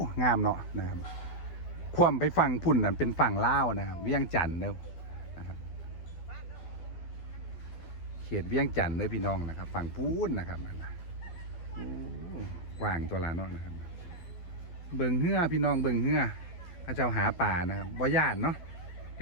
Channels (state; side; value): late; right; 12 ms